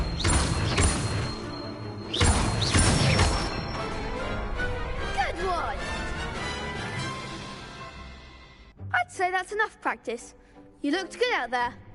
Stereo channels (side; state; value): both; identical; correlation 1.00